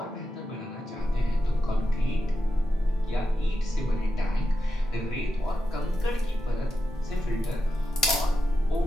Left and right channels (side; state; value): both; normal; correlation 0.89